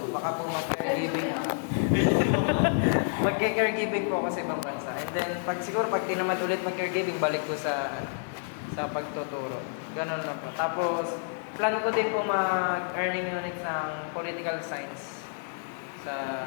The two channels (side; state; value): right; silent; 58 dB below the other